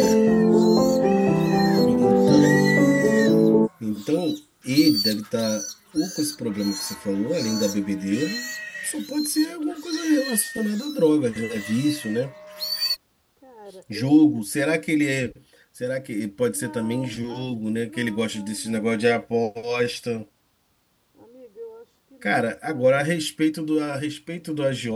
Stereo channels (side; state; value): both; identical; correlation 1.00